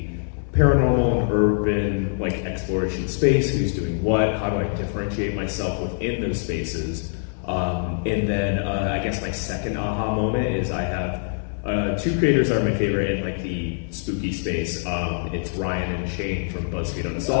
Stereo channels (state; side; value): silent; right; 62 dB below the other